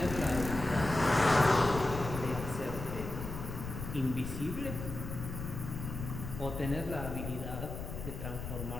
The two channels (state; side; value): noise; left; rumble, 7 dB below the sound